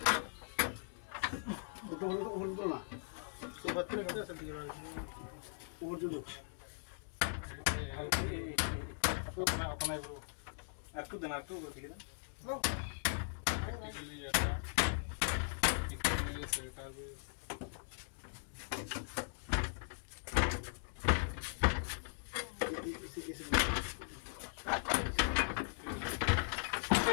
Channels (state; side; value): silent; right; digital silence